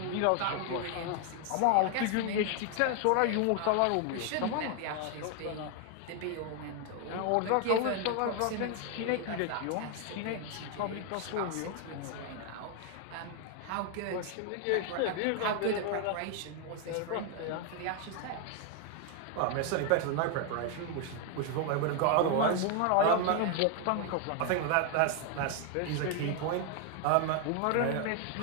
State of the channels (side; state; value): both; different; correlation 0.01